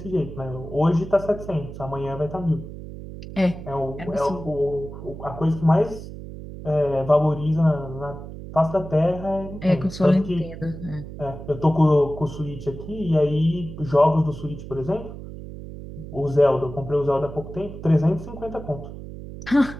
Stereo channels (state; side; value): noise; right; hum, 12 dB below the sound